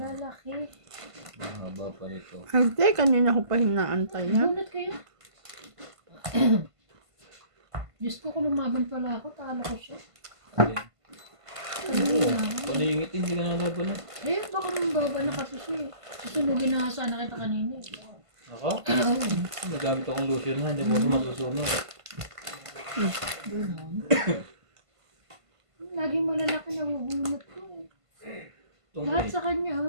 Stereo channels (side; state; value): left; late; 1.5 ms